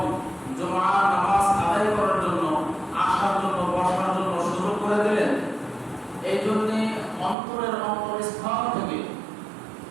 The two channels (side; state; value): left; drops out; at 7.4 s